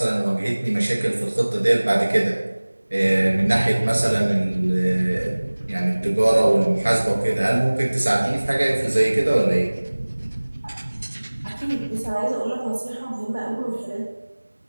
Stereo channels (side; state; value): both; inverted; correlation -1.00